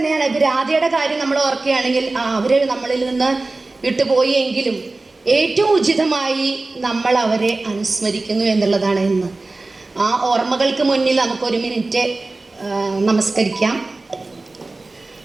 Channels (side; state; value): left; quieter; 3.3 dB